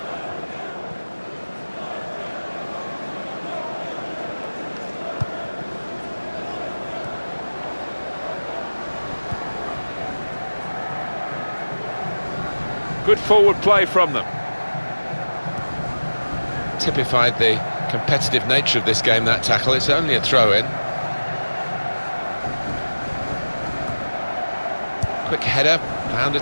Good forward play from them. Typified the competitive nature of this game, that tackle. It's only a throw-in. Quick header, found a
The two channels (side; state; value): both; inverted; correlation -1.00